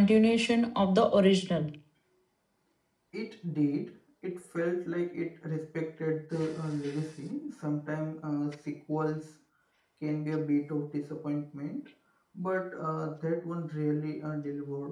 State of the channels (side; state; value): both; identical; correlation 1.00